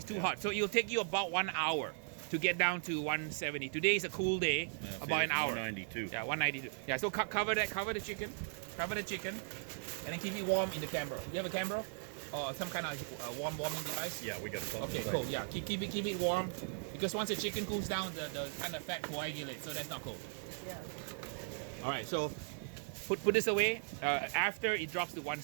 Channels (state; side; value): silent; left; 52 dB below the other